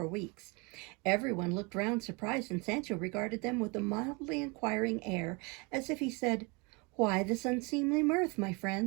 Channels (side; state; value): left; quieter; 29.3 dB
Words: weeks. Everyone looked round surprised, and Sancho regarded them with a mildly inquiring air, as if he said, "Why this unseemly mirth, my